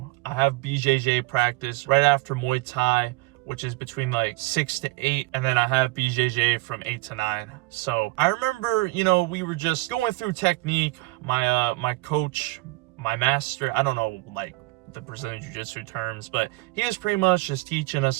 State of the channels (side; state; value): left; quieter; 21.6 dB